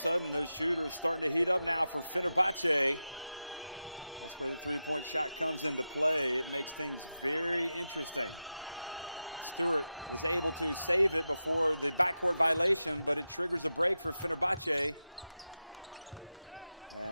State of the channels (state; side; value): inverted; both; correlation -0.91